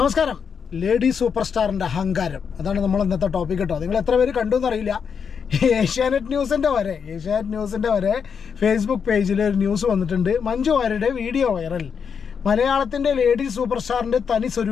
ലേഡി സൂപ്പർ സ്റ്റാറിൻ്റെ അഹങ്കാരം, അതാണ് നമ്മൾ ഇന്നത്തെ ടോപ്പിക് കേട്ടോ. നിങ്ങൾ എത്ര പേര് കണ്ടു എന്നറിയില്ല. ഏഷ്യാനെറ്റ് ന്യൂസിൻ്റെ വരെ ഫേസ്ബുക്ക് പേജിൽ ഒരു ന്യൂസ് വന്നിട്ടുണ്ട്. മഞ്ജു വാര്യരുടെ വീഡിയോ വൈറൽ. മലയാളത്തിൻ്റെ ലേഡി സൂപ്പർ സ്റ്റാറിൻ്റെ തനി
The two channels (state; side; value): quieter; right; 6.6 dB